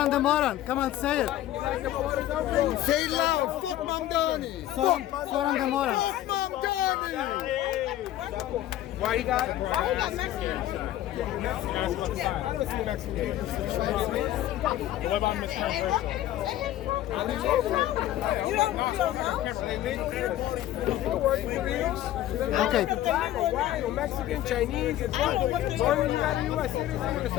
the moron, come on, say it. You like the borders open? Say it loud. Fuck Mamdani. Zhoran the moron. Fuck Mamdani. Why you got? Why you got Mexican? I don't see Mexican. What about Mexican? You don't know? Okay. White or Mexican, Chinese, as long as you got a U.S. citizen with a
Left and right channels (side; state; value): right; quieter; 13.5 dB